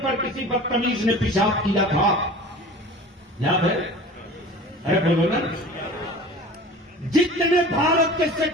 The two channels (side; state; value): both; normal; correlation 0.40